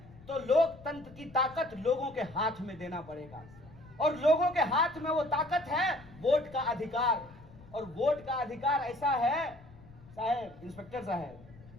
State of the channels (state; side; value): noise; left; rumble, 21 dB below the sound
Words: तो लोकतंत्र की ताकत लोगों के हाथ में देना पड़ेगा। और लोगों के हाथ में वो ताकत है वोट का अधिकार। और वोट का अधिकार ऐसा है, साहब इंस्पेक्टर साहब,